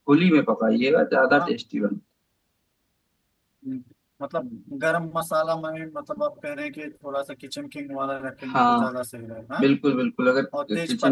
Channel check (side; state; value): both; identical; correlation 1.00